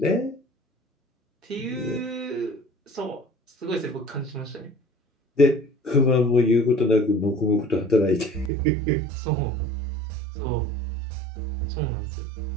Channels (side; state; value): left; drops out; at 8.5 s